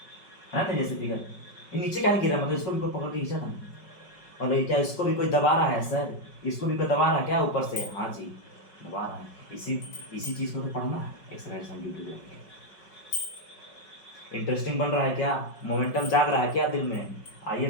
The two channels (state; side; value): late; right; 5.3 ms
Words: ना, जैसे फिगर ये नीचे क्या नहीं गिरा, मतलब इसको भी कोई पकड़ के खींचा था ना, और क्या इसको भी कोई दबा रहा है सर, इसको भी कोई दबा रहा है क्या ऊपर से? हाँ जी दबा रहा है। इसी चीज़ को तो पढ़ना है एक्सरसाइज हम ड्यूटी। इंटरेस्टिंग बन रहा है क्या? मोमेंटम जाग रहा है क्या दिल में? आइए